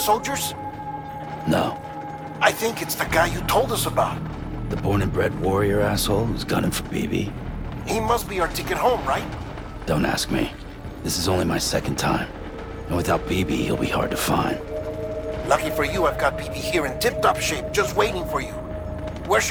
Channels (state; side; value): identical; both; correlation 1.00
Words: No. I think it's the guy you told us about. The born and bred warrior asshole who's gunning for BB? He must be our ticket home, right? Don't ask me. This is only my second time. And without BB, he'll be hard to find. Lucky for you, I've got BB here in tip-top shape, just waiting for you. Where